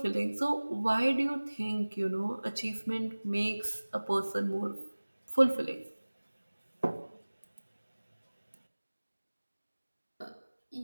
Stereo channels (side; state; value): both; inverted; correlation -1.00